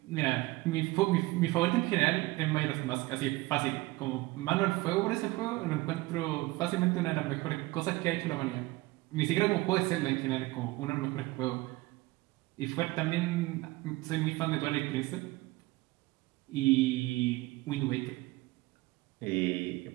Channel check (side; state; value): left; quieter; 20.6 dB